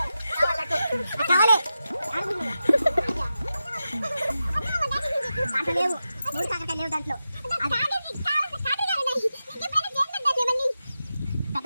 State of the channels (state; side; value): inverted; both; correlation -0.91